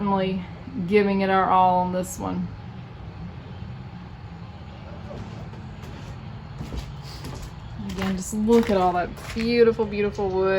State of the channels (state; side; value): identical; both; correlation 1.00